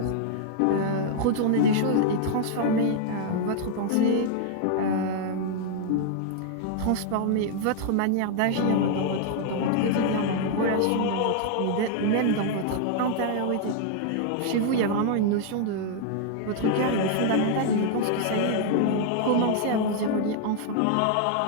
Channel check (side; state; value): both; different; correlation 0.00